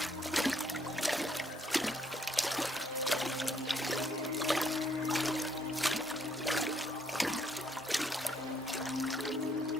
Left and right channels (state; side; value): normal; both; correlation 0.69